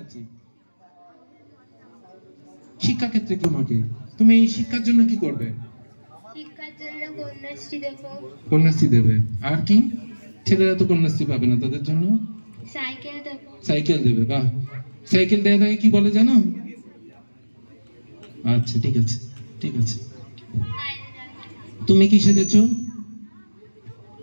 আছি। শিক্ষা ক্ষেত্রে তোমাকে, তুমি এই শিক্ষার জন্য কি করবে? শিক্ষার জন্য কন্যাশ্রী দেব। কন্যাশ্রী দেবে। আর কি? ছেলেরা তো কন্যাশ্রী পাবে না, তাদের জন্য সাইকেল দেব। সাইকেল দেবে। বাহ, সাইকেল দেওয়া থাকে কি বলে জানো? আচ্ছা, ঠিক আছে, ঠিক আছে। তুমি কি সেজেছো?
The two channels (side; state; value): both; inverted; correlation -1.00